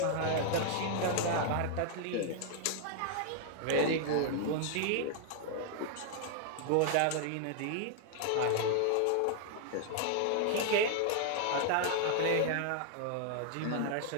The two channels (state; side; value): different; both; correlation 0.00